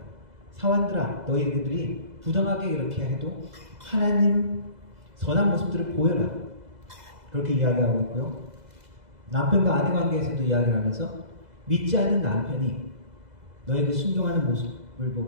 사환들아, 너희들이 부정하게 이렇게 해도 하나님 선한 모습들을 보여라. 그렇게 이야기하고 있고요. 남편과 아내 관계에서도 이야기를 하면서 믿지 않는 남편이 너에게 순종하는 모습을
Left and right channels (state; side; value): late; left; 2.0 ms